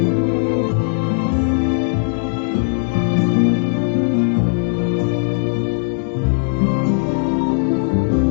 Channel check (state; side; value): silent; right; 67 dB below the other